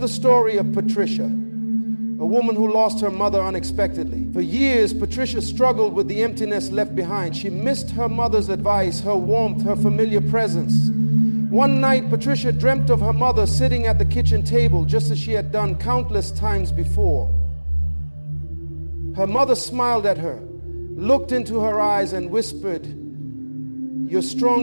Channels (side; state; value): both; inverted; correlation -1.00